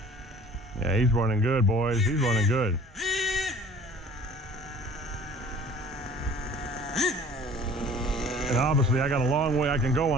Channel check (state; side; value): normal; both; correlation 0.49